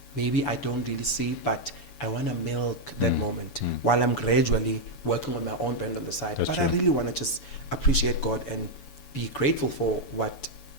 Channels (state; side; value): late; right; 7.0 ms